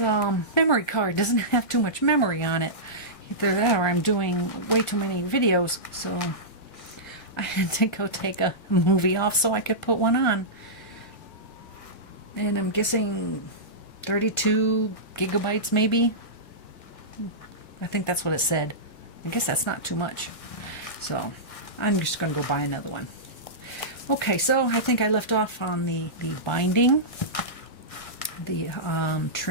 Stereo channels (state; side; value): late; right; 1.5 ms